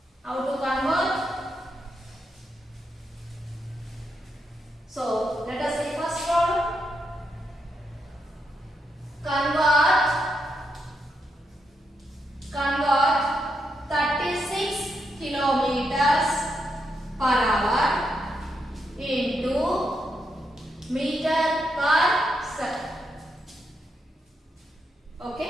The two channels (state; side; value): normal; both; correlation 0.82